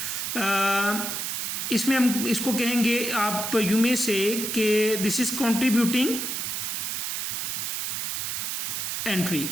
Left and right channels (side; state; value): right; noise; hiss, 2 dB below the sound